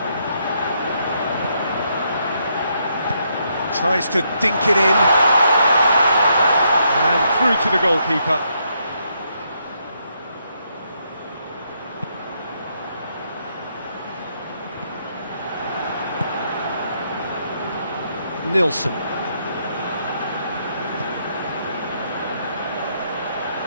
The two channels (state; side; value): inverted; both; correlation -0.76